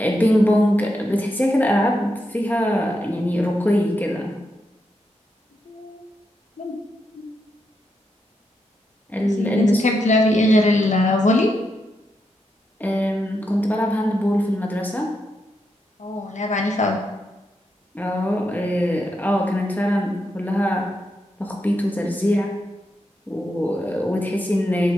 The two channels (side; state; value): both; normal; correlation 0.83